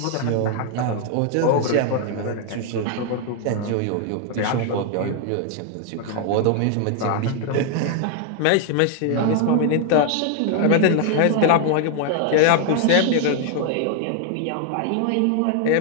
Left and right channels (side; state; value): both; different; correlation 0.00